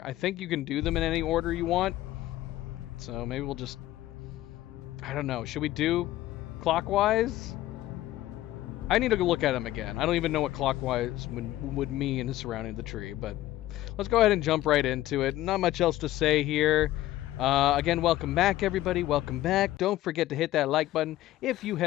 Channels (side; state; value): right; quieter; 15.1 dB